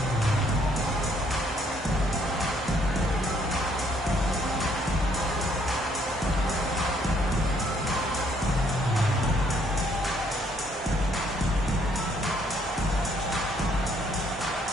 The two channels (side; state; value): both; normal; correlation 0.67